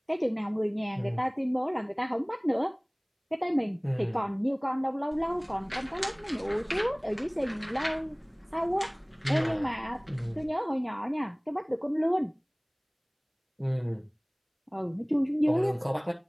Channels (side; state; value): both; identical; correlation 1.00